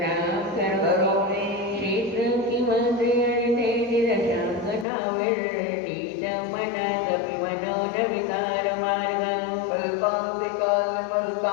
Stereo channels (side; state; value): right; drops out; at 4.9 s